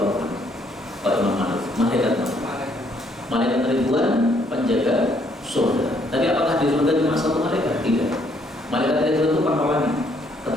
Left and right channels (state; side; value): normal; both; correlation 0.68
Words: anhu. Pak Imam Malik, malaikat ribuan penjaga surga. Tapi apakah di surga cuma satu malaikat? Tidak. Malaikat itu pangkalannya,